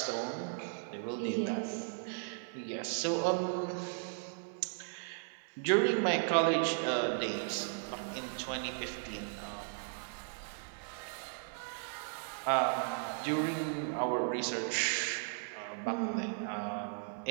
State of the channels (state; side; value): silent; left; 54 dB below the other